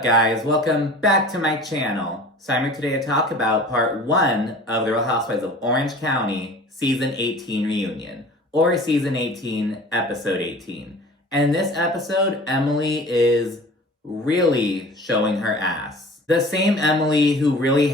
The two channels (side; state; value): both; normal; correlation 0.43